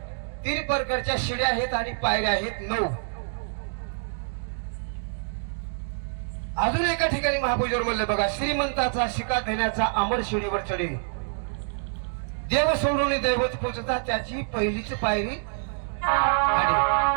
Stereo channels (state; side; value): silent; left; digital silence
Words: 3 प्रकारच्या शिड्या आहेत आणि पायऱ्या आहेत 9. अजून एका ठिकाणी महापूजेवर म्हणलं बघा श्रीमंताचा शिका देण्याचा अमर शिडीवर चढे. देव सोडून दैवत पोचता त्याची पहिलीच पायरी